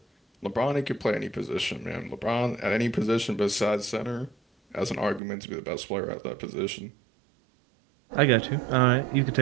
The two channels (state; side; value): drops out; left; at 5.2 s